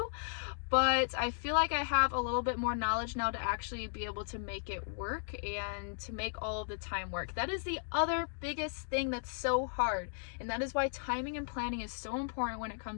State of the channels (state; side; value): silent; right; digital silence